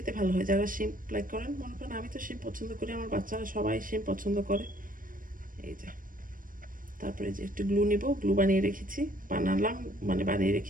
ভালো হয়, যারা শিম লাইক করেন, মনে করেন আমি তো শিম পছন্দ করি, আমার বাচ্চারা সবাই শিম পছন্দ করে। এই যে তারপরে যে একটু গ্লু নিব, গ্লু বানিয়ে রেখেছি, বানিয়ে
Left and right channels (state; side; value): late; left; 0.40 ms